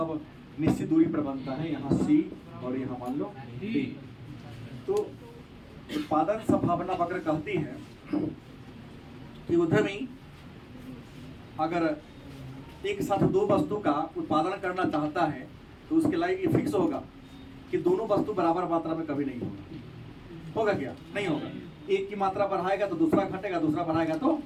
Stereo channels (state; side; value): identical; both; correlation 1.00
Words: निश्चित दूरी पर बनता है, यहाँ सी और यहाँ मान लो डी। तो उत्पादन संभावना वक्र कहती है कि उद्यमी अगर एक साथ 2 वस्तु का उत्पादन करना चाहता है तो उसके लिए ये फिक्स होगा कि दोनों वस्तु बराबर मात्रा में कभी नहीं होगा। होगा क्या? नहीं होगा। एक की मात्रा बढ़ाएगा तो दूसरा घटेगा, दूसरा बढ़ाएगा तो